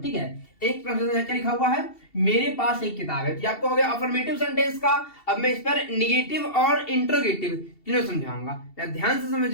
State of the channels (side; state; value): right; late; 2.7 ms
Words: ठीक है, एक ट्रांसलेशन है क्या लिखा हुआ है, मेरे पास एक किताब है, तो आपको हो गया अफर्मेटिव सेंटेंस का। अब मैं इस पर निगेटिव और इंट्रोगेटिव तीनों समझाऊंगा, ध्यान से